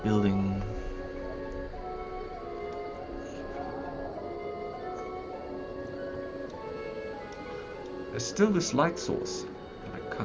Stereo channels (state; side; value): identical; both; correlation 1.00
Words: building. There's still this light source that I